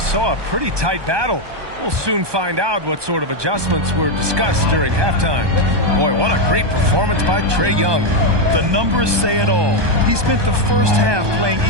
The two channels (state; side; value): late; left; 1.2 ms